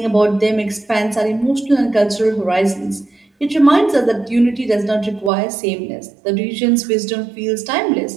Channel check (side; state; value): left; drops out; at 5.3 s